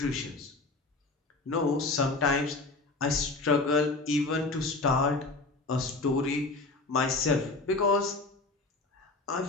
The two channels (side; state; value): right; quieter; 3.4 dB